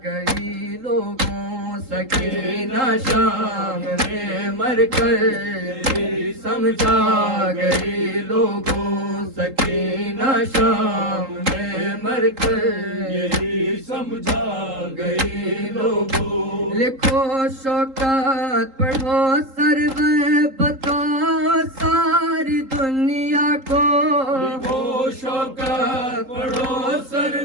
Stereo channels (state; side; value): late; left; 3.8 ms